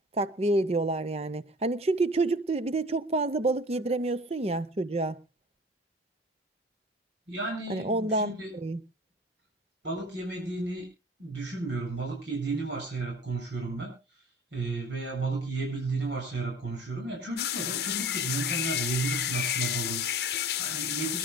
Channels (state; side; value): normal; both; correlation 0.43